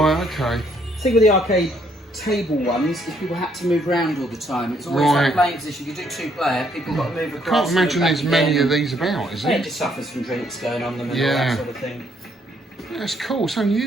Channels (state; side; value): normal; both; correlation 0.69